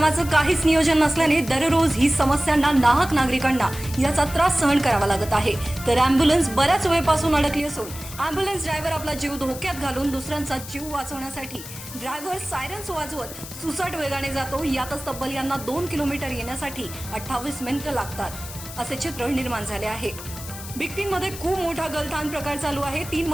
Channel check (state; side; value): noise; left; hiss, 12 dB below the sound